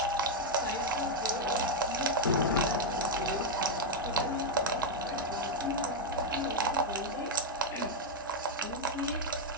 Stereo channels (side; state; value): both; normal; correlation 0.00